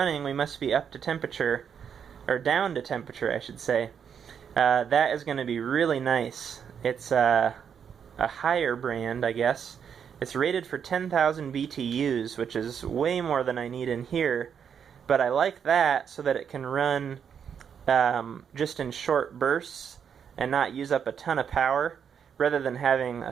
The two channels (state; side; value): quieter; left; 7.6 dB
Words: We must be up to temperature, or down to temperature I should say. That is going to be really nice. It's a higher brand, I guess. It's rated for 10,000 BTUs, which is way more than I need in here, but I like that so that it can run just in short bursts and not use up a ton of power, rather than having a